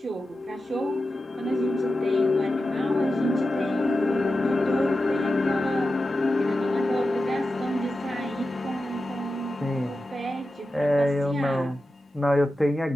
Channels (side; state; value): both; normal; correlation 0.92